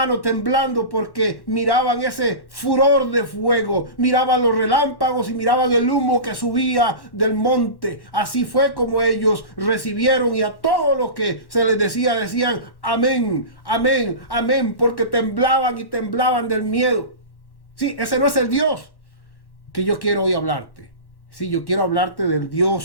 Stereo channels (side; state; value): right; late; 1.1 ms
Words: temblando porque miraban ese furor de fuego, miraban los relámpagos y miraban el humo que subía del monte. Así fue como ellos recibieron, y a todo lo que se les decía, decían amén, amén, amén, porque temblaban y temblaban del miedo. Sí, ese no es el Dios que yo quiero hoy hablarte. Sí, yo quiero hablarte del